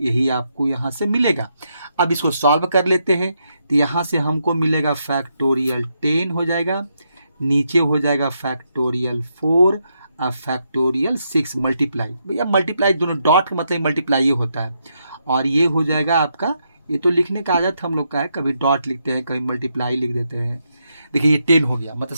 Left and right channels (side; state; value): both; inverted; correlation -0.80